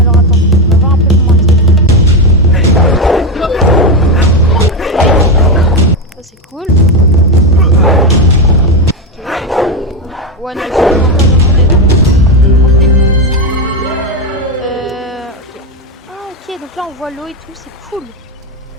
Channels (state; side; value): normal; both; correlation 0.11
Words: attends, on va voir un peu comment ça c'est cool. Ok. Ouais, non, c'est ok, donc là on voit l'eau et tout, c'est cool.